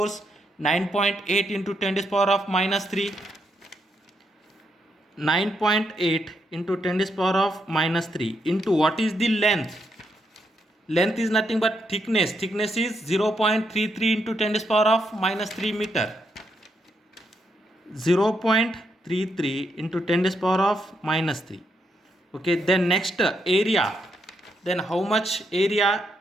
9.8 into 10 to the power of minus 3. 9.8 into 10 to the power of minus 3 into what is the length? Length is nothing but thickness. Thickness is 0.33 into 10 to the power of minus 3 meter. 0.33 into 10 to the power of minus 3. Okay, then next area. Then how much area?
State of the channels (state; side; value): normal; both; correlation 0.79